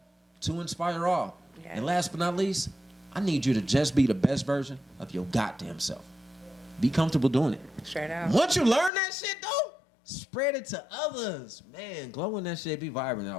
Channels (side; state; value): right; drops out; at 8.9 s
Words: to inspire all. Yeah. And last but not least, I need you to just be the best version of your goddamn self. Be comfortable doing it. Straight out. Once you learn that shit, though, spread it to others. Man, glowing that shit, be vibrant. I